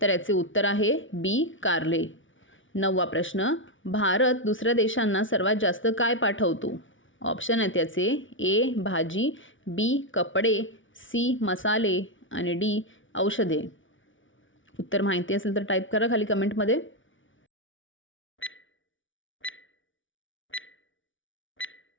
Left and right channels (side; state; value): right; late; 0.56 ms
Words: तर याचे उत्तर आहे बी कारले. नववा प्रश्न, भारत दुसऱ्या देशांना सर्वात जास्त काय पाठवतो? ऑप्शन आहेत याचे: ए भाजी, बी कपडे, सी मसाले आणि डी औषधे. उत्तर माहिती असेल तर टाईप करा खाली कमेंटमध्ये.